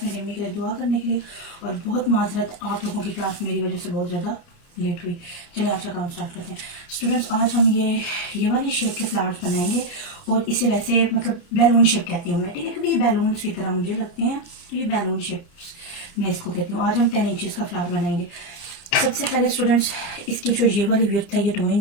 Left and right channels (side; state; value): right; late; 29 ms